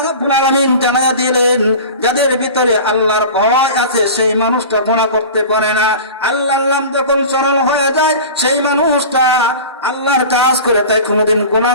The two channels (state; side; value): inverted; both; correlation -0.35